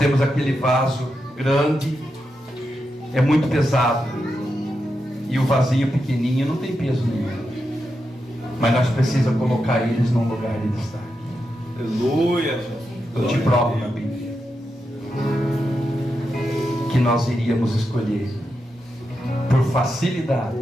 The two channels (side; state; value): both; normal; correlation 0.87